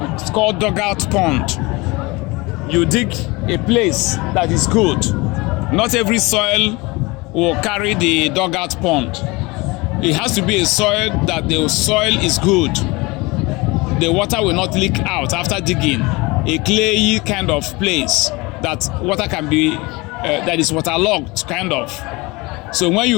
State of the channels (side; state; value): right; quieter; 24.2 dB